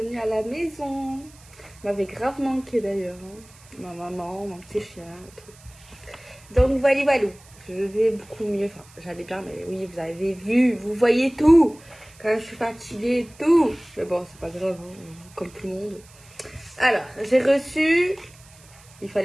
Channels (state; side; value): noise; right; hiss, 24 dB below the sound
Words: à la maison. M'avait grave manqué d'ailleurs, hein. Ma maman, mon petit chien et tout. Donc voilà, voilà, je vais beaucoup mieux. Enfin, j'allais bien, mais oui, vous avez vu, vous voyez tout. Quand je suis fatiguée et tout. Mais bon, c'est pas grave, hein, comme tout le monde. Alors, j'ai reçu, il